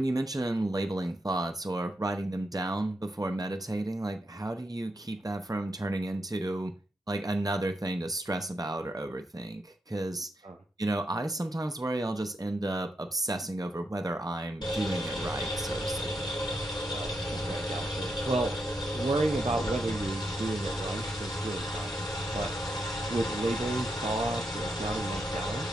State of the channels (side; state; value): both; normal; correlation 0.82